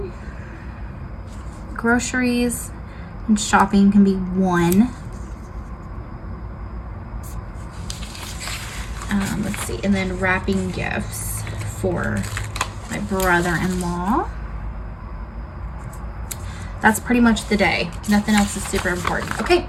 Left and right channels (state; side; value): identical; both; correlation 1.00